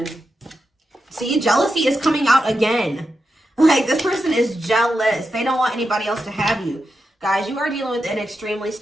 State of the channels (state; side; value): normal; both; correlation 0.88